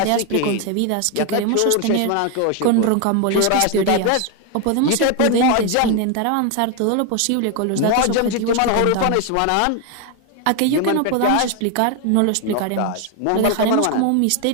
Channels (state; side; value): different; both; correlation 0.01